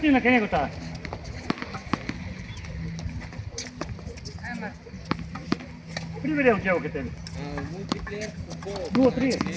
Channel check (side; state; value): both; identical; correlation 1.00